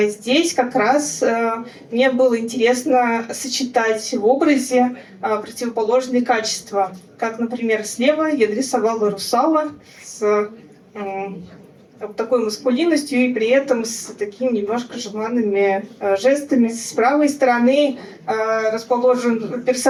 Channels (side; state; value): both; identical; correlation 1.00